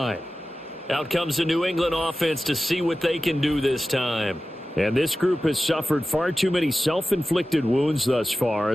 Out comes the New England offense to see what they can do this time. And this group has suffered far too many self-inflicted wounds thus far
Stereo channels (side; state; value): both; normal; correlation 0.95